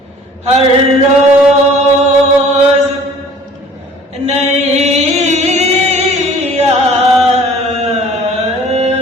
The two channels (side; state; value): both; normal; correlation 0.50